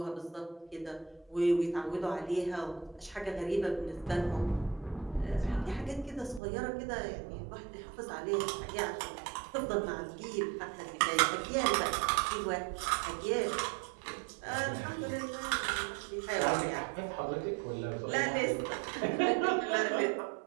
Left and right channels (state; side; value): drops out; left; at 6.4 s